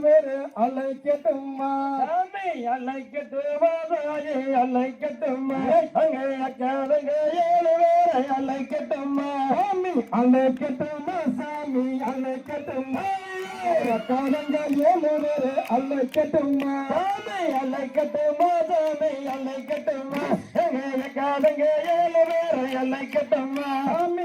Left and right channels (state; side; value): identical; both; correlation 1.00